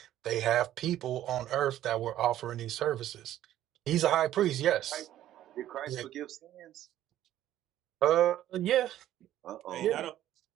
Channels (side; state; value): left; quieter; 12.8 dB